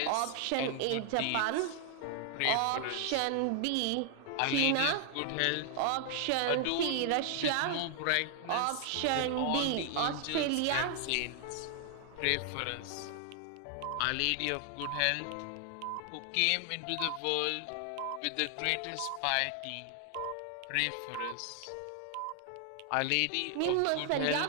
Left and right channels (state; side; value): different; both; correlation 0.00